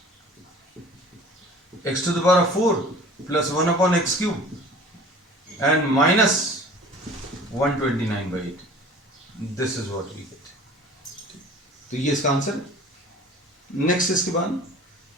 x to the power 4 plus 1 upon x cube and minus 129/8। This is what we get. तो ये इसका आंसर है। नेक्स्ट इसके बाद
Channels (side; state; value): both; normal; correlation 0.45